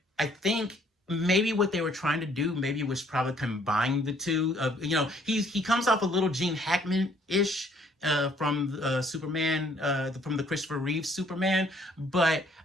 I think maybe what they were trying to do maybe was probably combine the two. He comes off a little Gene Hackman-ish from Superman, from the Christopher Reeve Superman, but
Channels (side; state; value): both; normal; correlation 0.62